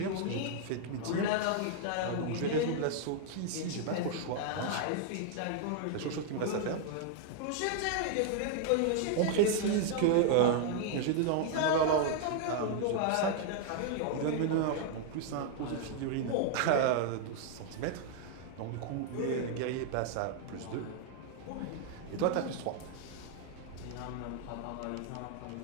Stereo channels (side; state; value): both; different; correlation 0.00